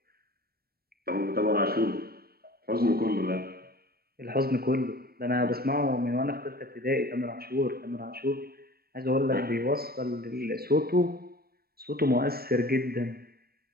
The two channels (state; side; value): late; left; 0.44 ms